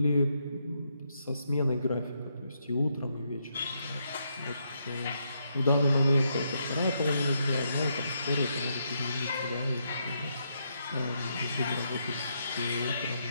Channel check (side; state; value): both; inverted; correlation -0.79